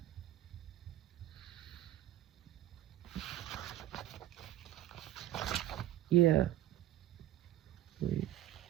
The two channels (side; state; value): left; quieter; 13.4 dB